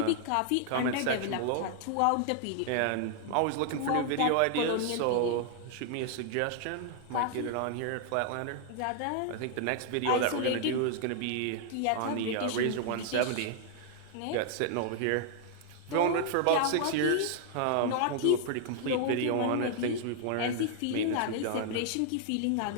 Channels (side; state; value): both; different; correlation 0.00